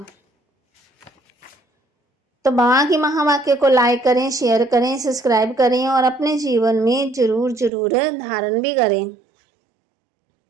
तो बाबा की महावाक्य को लाइक करें, शेयर करें, सब्सक्राइब करें और अपने जीवन में जरूर धारण भी करें।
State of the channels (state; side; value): drops out; left; at 7.7 s